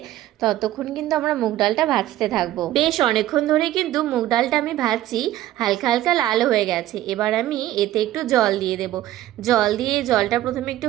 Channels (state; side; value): quieter; left; 14.2 dB